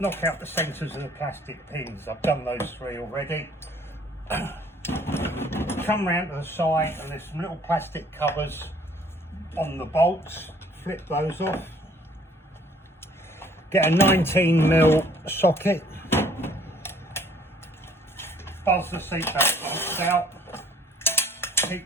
knock out the centres of the plastic pins. I've done those 3 already. Come round to the side and there's some little plastic covers on the bolts, flip those off. Get a 19mm socket, buzz the seatbelt bolts out,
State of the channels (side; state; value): both; normal; correlation 0.57